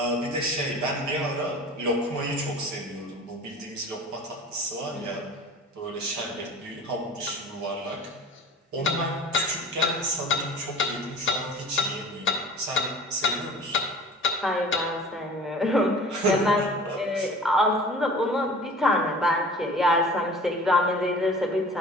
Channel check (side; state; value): both; normal; correlation 0.43